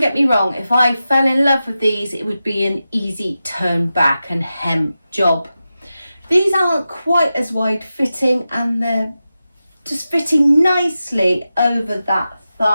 get me wrong, if I fell in love with these, it would be an easy turn back and hem job. These aren't quite as wide fitting, and they're just fitting nicely over that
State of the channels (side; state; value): both; inverted; correlation -0.92